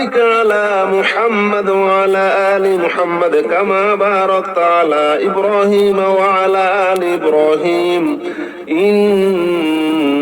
على محمد وعلى آل محمد كما باركت على إبراهيم وعلى آل إبراهيم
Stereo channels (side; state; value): both; identical; correlation 1.00